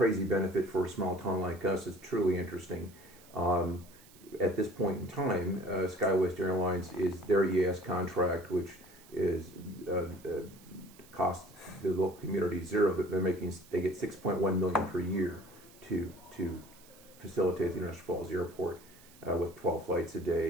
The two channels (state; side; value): noise; right; hiss, 24 dB below the sound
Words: benefit for a small town like us is truly interesting. At this point in time, SkyWest Airlines is their EAS contract, which is cost the local community zero. That they get 6.1 million per year to facilitate the International Falls Airport with 12 flights a